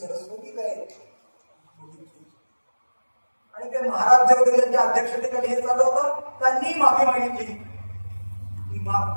काय आणि ते महाराज जे होते त्यांच्या अध्यक्षतेखाली हे चालू होतं, त्यांनी माफी मागितली की माफ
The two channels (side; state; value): both; inverted; correlation -1.00